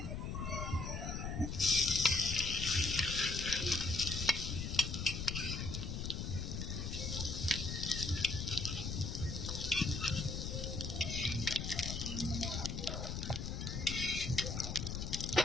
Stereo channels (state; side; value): noise; left; rumble, 3 dB below the sound